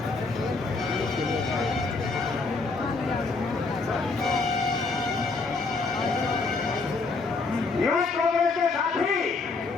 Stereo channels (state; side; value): quieter; right; 4.0 dB